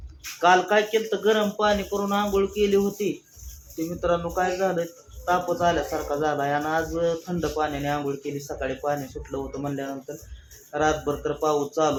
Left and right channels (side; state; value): both; identical; correlation 1.00